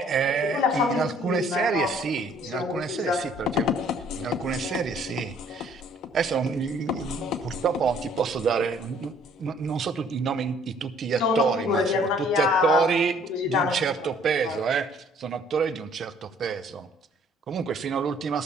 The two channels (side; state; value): both; normal; correlation 0.59